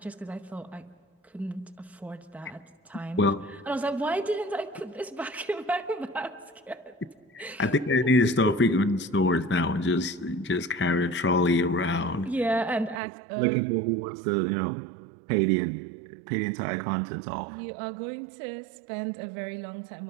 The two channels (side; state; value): left; drops out; at 13.0 s